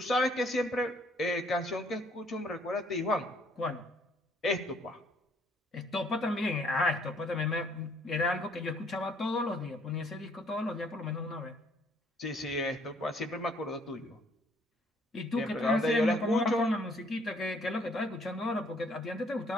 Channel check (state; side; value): normal; both; correlation 0.64